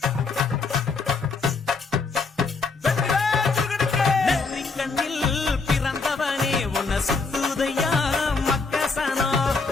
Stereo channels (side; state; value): right; quieter; 4.4 dB